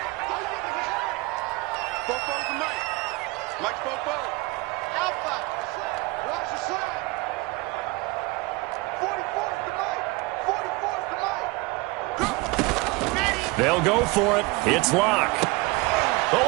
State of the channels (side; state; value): left; quieter; 23.4 dB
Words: They'll go for it. It's Lock.